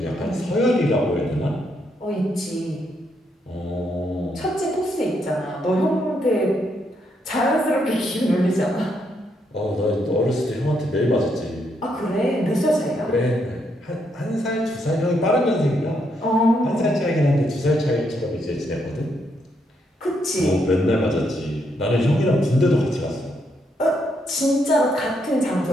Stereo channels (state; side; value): normal; both; correlation 0.77